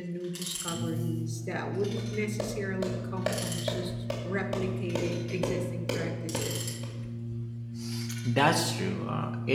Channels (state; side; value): identical; both; correlation 1.00